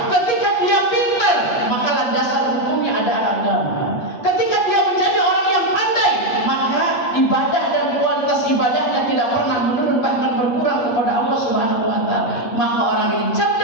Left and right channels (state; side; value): late; right; 8.5 ms